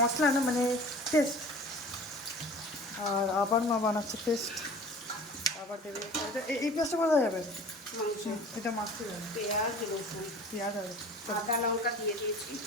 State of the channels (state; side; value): normal; both; correlation 0.42